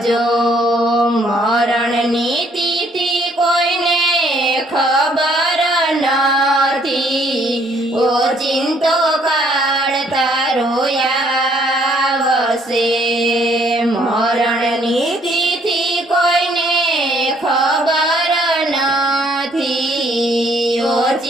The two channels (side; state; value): both; normal; correlation 0.65